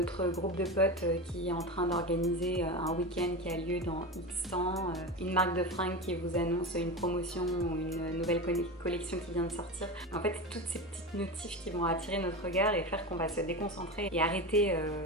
groupe de potes qui est en train d'organiser un week-end qui a lieu dans X temps, une marque de fringues qui vous annonce une promotion ou une nouvelle collection qui vient de sortir. En fait, toutes ces petites notifs qui vont attirer notre regard et faire qu'on va se déconcentrer et arrêter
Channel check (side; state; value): both; normal; correlation 0.23